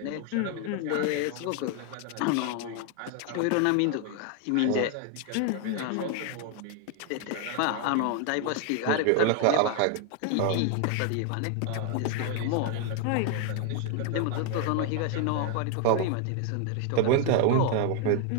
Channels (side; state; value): both; different; correlation 0.00